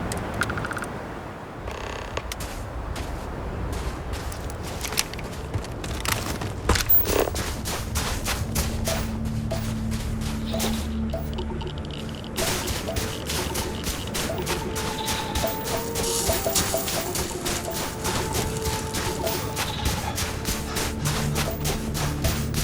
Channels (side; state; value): both; identical; correlation 1.00